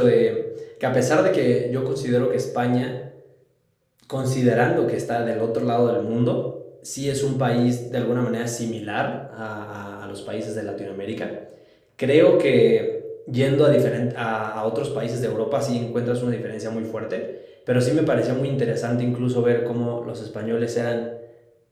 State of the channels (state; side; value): identical; both; correlation 1.00